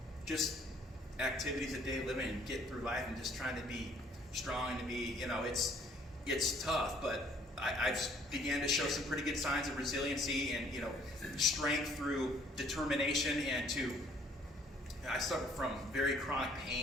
just activities of daily living and get through life and just trying to be strong and to be, it's tough, but I've began to show some pretty good signs of resiliency and, strength through determination, and I suffer from very chronic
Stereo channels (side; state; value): both; normal; correlation 0.61